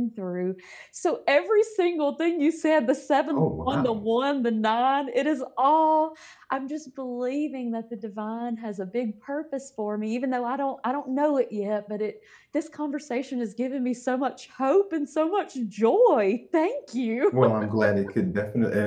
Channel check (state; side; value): identical; both; correlation 1.00